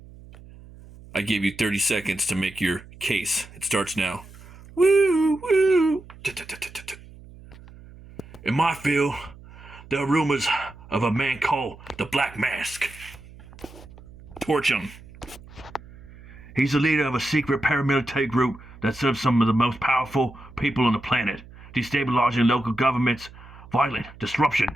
I gave you 30 seconds to make your case. It starts now. Woo, woo. In my field, there are rumors of a man called the Black Mask. Torch him. He's the leader of a secret paramilitary group that serves some of the most powerful people on the planet, destabilizing local governments, violent disruption,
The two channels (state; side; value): noise; right; hum, 20 dB below the sound